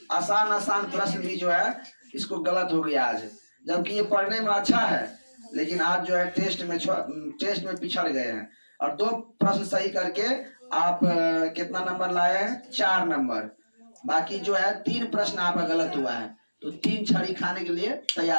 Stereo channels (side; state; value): both; inverted; correlation -1.00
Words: आसान प्रश्न भी जो है इसको गलत हो गया आज, जबकि ये पढ़ने में अच्छा है, लेकिन आज जो है टेस्ट में पिछड़ गए हैं। और 2 प्रश्न सही करके आप कितना नंबर लाए हैं? 4 नंबर। बाकी जो है 3 प्रश्न आपका गलत हुआ है, तो 3 छड़ी खाने के लिए